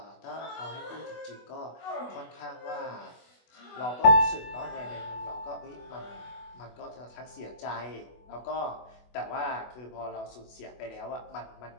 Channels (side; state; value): right; late; 24 ms